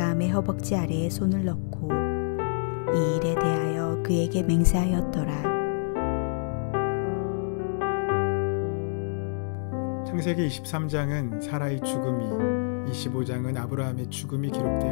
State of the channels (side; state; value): right; silent; digital silence